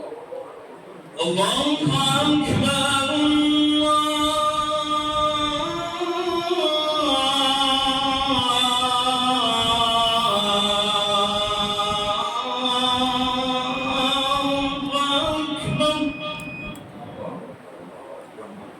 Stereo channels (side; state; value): both; identical; correlation 1.00